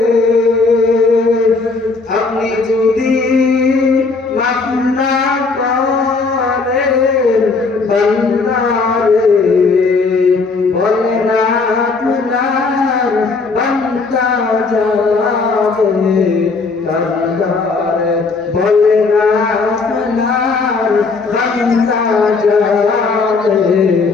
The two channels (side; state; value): right; quieter; 4.2 dB